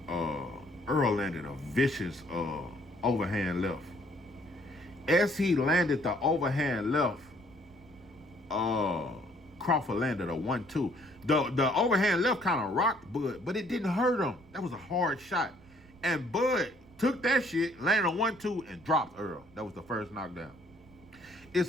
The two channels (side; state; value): right; noise; rumble, 25 dB below the sound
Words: Errol landed a vicious overhand left. As he landed the overhand left, Crawford landed a 1-2. The overhand left kind of rocked Bud, but it didn't hurt him. That was a hard shot. And Bud took that shit, landed a 1-2, and dropped Errol. That was the first knockdown.